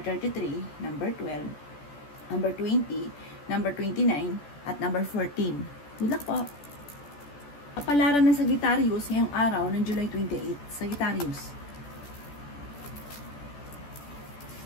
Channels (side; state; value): right; late; 14 ms